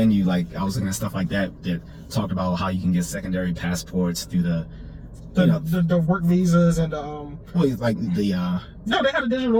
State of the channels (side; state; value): both; identical; correlation 1.00